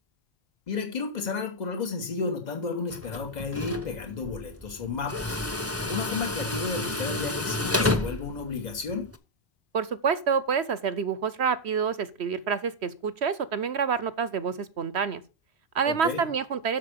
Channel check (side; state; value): both; normal; correlation -0.01